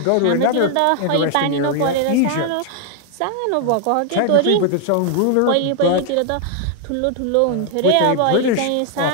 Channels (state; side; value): different; both; correlation 0.00